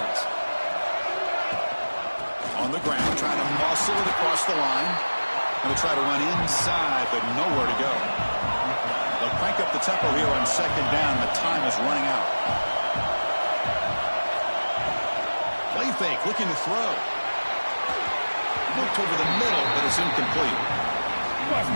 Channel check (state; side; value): inverted; both; correlation -1.00